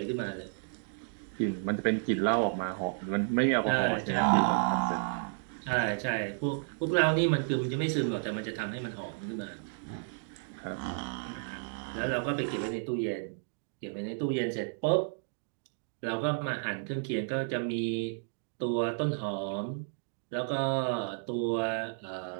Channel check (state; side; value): silent; left; digital silence